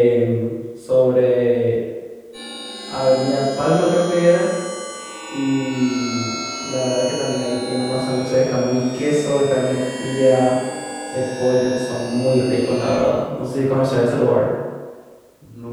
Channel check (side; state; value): both; identical; correlation 1.00